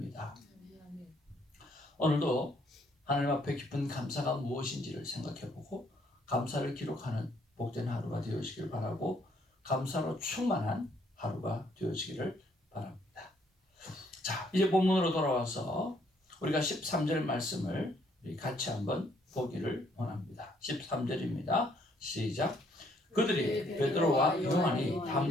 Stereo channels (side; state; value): both; normal; correlation 0.67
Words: 오늘도 하나님 앞에 깊은 감사가 무엇인지를 생각해보고 감사를 기록하는 복된 하루가 되어지길 바라고 감사로 충만한 하루가 되어지기를 바랍니다. 자, 이제 본문으로 돌아와서 우리가 13절 말씀을 같이 한번 보기를 원합니다. 13절입니다. 시작. 그들이 베드로와 요한이